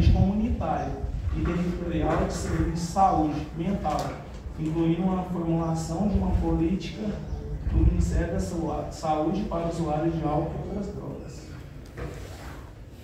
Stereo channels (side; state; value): both; identical; correlation 1.00